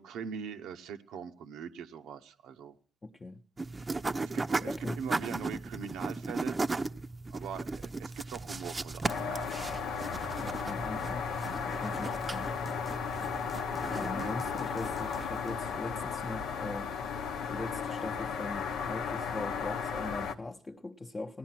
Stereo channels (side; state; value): both; normal; correlation 0.72